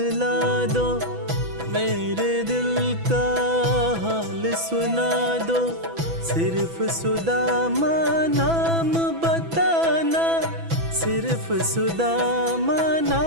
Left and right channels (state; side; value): late; left; 6.0 ms